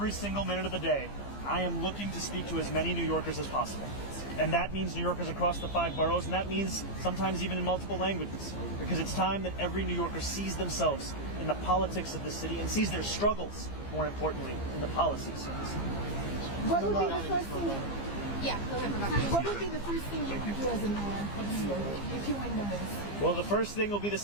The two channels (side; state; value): right; late; 15 ms